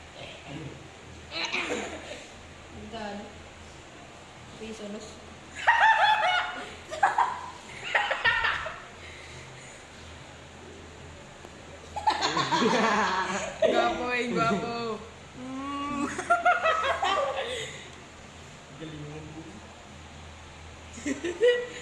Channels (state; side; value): identical; both; correlation 1.00